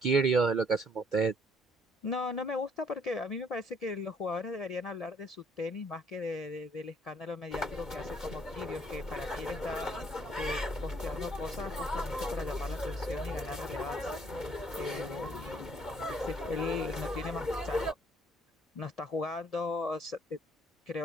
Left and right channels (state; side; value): normal; both; correlation 0.64